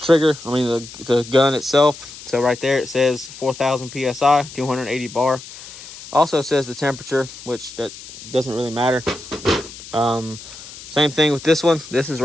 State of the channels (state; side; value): noise; left; hiss, 16 dB below the sound